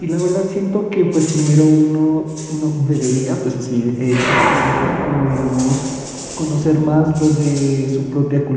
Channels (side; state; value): both; identical; correlation 1.00